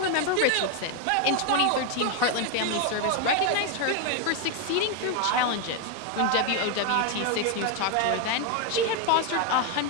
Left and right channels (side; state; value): both; different; correlation 0.01